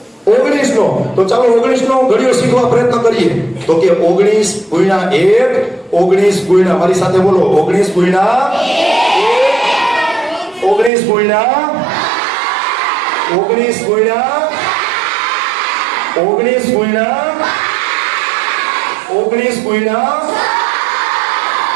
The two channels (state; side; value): drops out; left; at 10.9 s